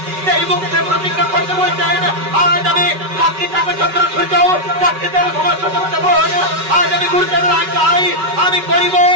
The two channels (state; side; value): late; left; 5.3 ms